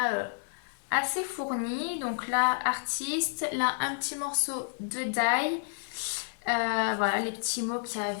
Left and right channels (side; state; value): right; silent; digital silence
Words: assez fournis. Donc là, artiste, là, un petit morceau de die. Voilà, les petits mots qu'il y